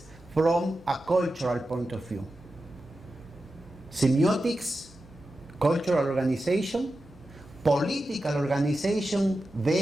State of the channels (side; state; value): both; normal; correlation 0.92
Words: from a cultural point of view. Semiotics, cultural organization, political organization